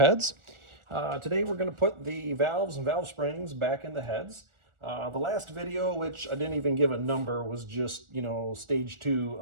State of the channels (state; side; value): late; left; 1.4 ms